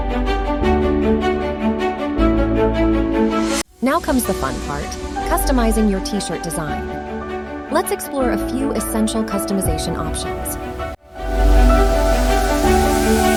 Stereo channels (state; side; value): identical; both; correlation 1.00